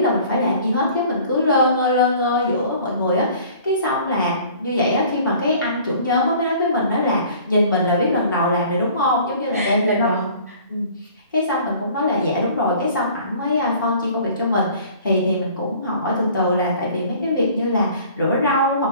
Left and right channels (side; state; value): both; inverted; correlation -0.50